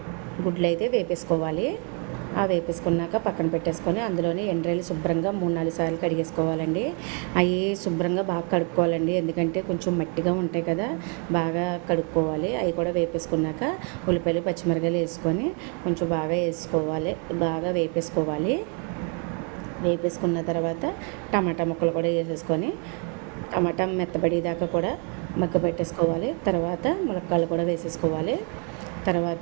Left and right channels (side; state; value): left; quieter; 38.0 dB